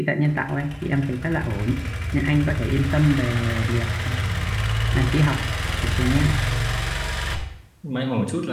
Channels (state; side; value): identical; both; correlation 1.00